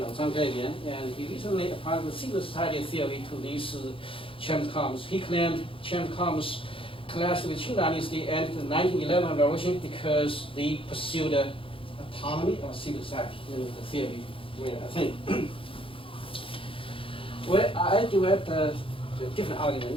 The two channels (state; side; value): late; right; 0.26 ms